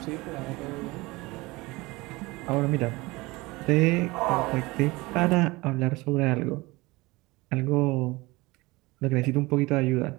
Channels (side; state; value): left; quieter; 22.2 dB